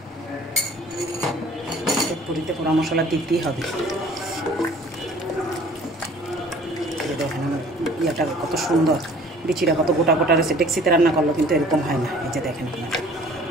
পুরিতে পোড়া মশলা দিতেই হবে। দেখেন আমার ইয়েটা কত সুন্দর, বিচিটা কত গোটা গোটা রয়েছে। ডেক্সিতে রান্না করলো কিন্তু এরকম হয় না। এই যে দেখেন আপনারা,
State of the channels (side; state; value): both; normal; correlation 0.50